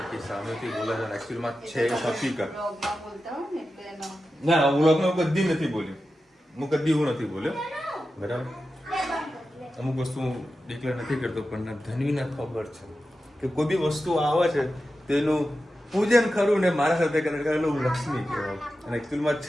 સામેથી બોલે છે. એકચ્યુઅલમાં છે હકીકત. ના વ્લોગમાં કદી નથી બોલ્યો. હું કદી એવું નથી બોલ્યો બરાબર. અમુક વસ્તુ ડિક્લેર નથી કરતો પણ ધનવીને ખબર છે કે કોઈ બી વસ્તુ આવે છે તેનું પૂજન ખરું ને મારા સાથે કરેલું લક્ષ્મી કહેવાય અને એકચ્યુઅલમાં જ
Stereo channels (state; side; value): normal; both; correlation 0.92